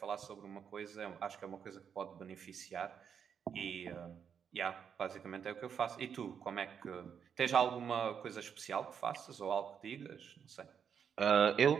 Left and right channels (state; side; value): quieter; left; 7.5 dB